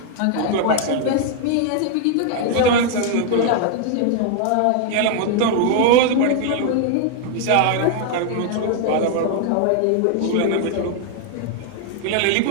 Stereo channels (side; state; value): both; different; correlation 0.00